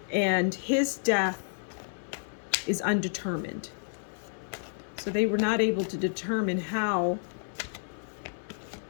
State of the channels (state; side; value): silent; right; digital silence